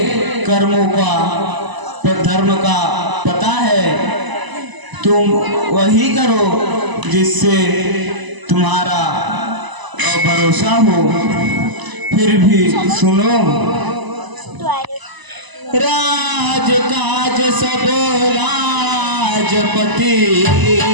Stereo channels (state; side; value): late; left; 1.0 ms